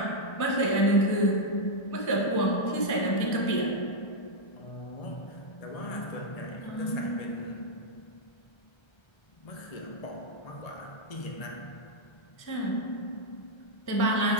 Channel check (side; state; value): right; late; 1.3 ms